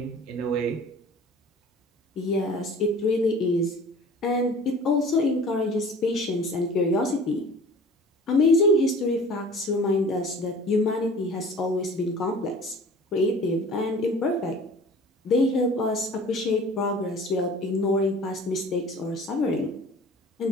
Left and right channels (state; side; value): normal; both; correlation 0.45